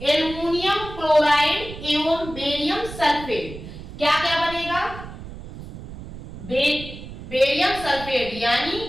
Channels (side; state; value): right; noise; rumble, 13 dB below the sound